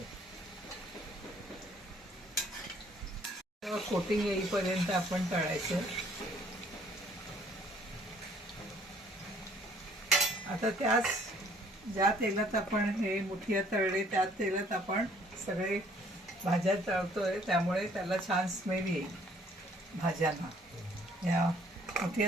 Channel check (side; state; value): both; normal; correlation 0.60